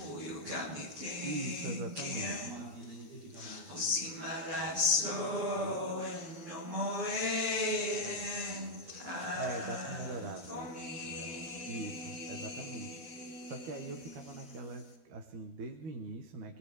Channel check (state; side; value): late; left; 12 ms